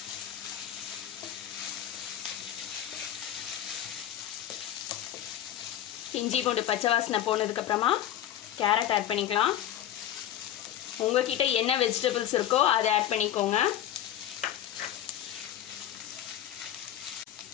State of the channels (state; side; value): quieter; right; 11.6 dB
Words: இஞ்சி பூண்டு பச்சை வாசனை போனதுக்கப்புறமா கேரட் ஆட் பண்ணிக்கலாம். உங்ககிட்ட என்ன வெஜிடபிள்ஸ் இருக்கோ அதை ஆட் பண்ணிக்கோங்க.